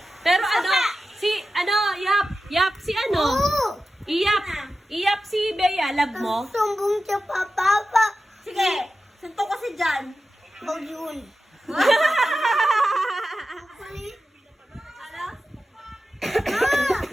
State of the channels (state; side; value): normal; both; correlation 0.93